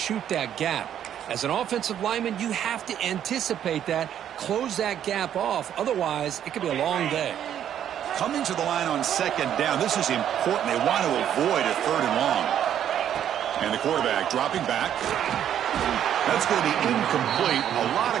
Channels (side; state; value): left; quieter; 10.0 dB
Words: that gap? As an offensive lineman, you have to anticipate that, close that gap off. Otherwise, it could be a long day. Coming to the line on second down. This is important. They want to avoid a third and long. And the quarterback dropping back. That's going to be incomplete. A lot